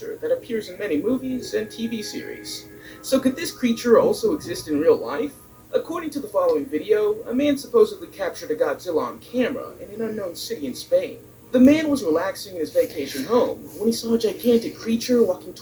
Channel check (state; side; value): identical; both; correlation 1.00